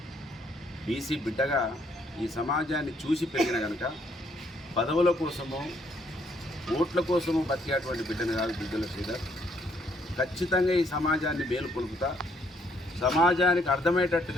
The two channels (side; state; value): both; normal; correlation 0.69